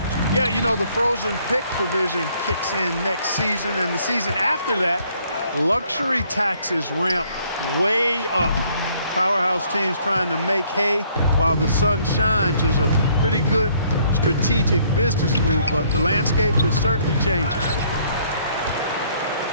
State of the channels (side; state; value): both; inverted; correlation -0.64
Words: Yeah, you know, the frozen pick provision kicks in next season, and the season after that, luxury taxes ramp way up. Powerhouse teams trying to make hay while the sun shines is a pretty good strategic business move, but the landscape is certainly changing.